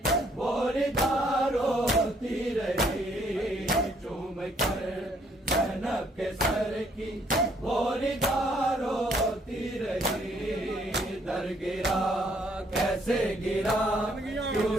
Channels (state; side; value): normal; both; correlation 0.66